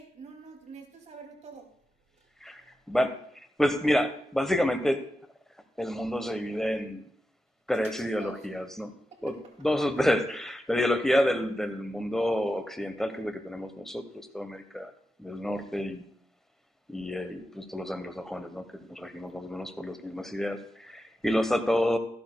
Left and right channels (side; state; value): both; normal; correlation 0.90